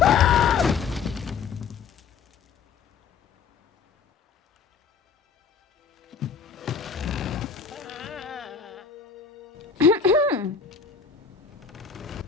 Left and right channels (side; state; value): right; quieter; 6.0 dB